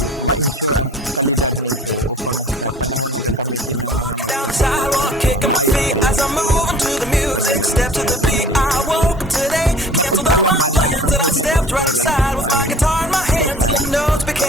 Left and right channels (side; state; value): both; normal; correlation 0.47